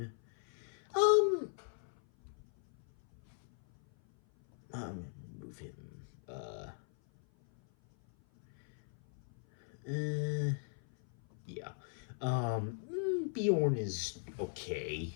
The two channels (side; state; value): right; silent; 52 dB below the other